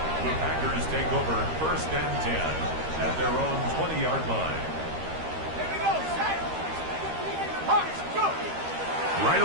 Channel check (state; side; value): late; left; 13 ms